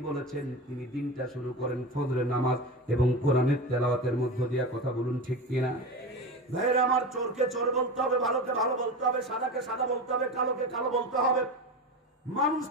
বলেছেন তিনি দিনটা শুরু করেন ফজরের নামাজ এবং কোরআনের তেলাওয়াতের মধ্য দিয়ে। কথা বলুন ঠিক কিনা? ভাইরা আমার, চোরকে চোর বলতে হবে, ভালোকে ভালো বলতে হবে, সাদাকে সাদা বলতে হবে, কালোকে কালো বলতে হবে। মানুষ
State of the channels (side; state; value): both; normal; correlation 0.26